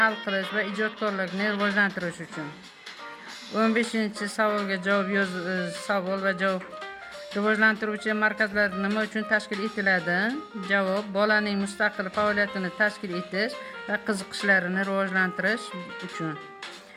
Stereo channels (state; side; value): identical; both; correlation 1.00